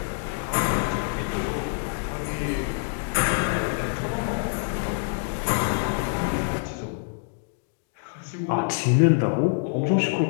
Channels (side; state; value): right; silent; 61 dB below the other